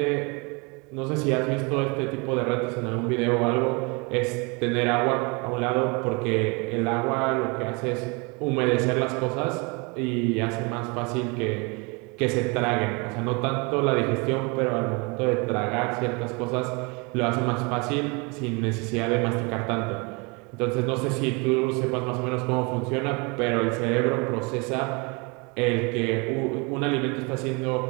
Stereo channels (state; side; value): quieter; left; 30.0 dB